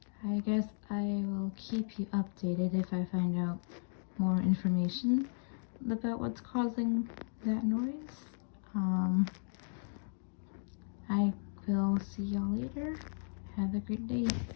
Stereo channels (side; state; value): right; silent; digital silence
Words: I guess I will keep you updated if I find out more information about what's causing that noise. I will see y'all later. Have a great day.